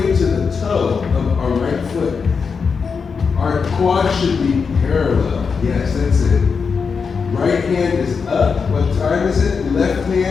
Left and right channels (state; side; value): quieter; right; 5.5 dB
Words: to the toe of our right foot. Our quad should be parallel. Yes, that's it. Right hand is up. What time is it? Left